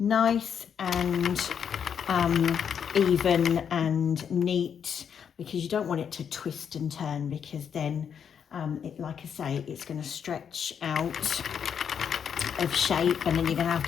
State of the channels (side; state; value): right; quieter; 7.6 dB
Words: and even and neat, because you don't want it to twist and turn, because then like I say, it's going to stretch out of shape, and then you're going to have